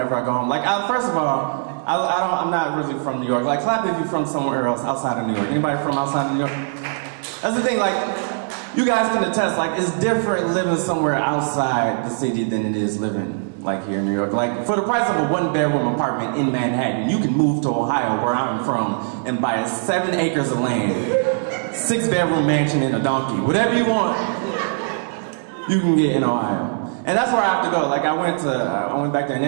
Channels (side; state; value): left; silent; digital silence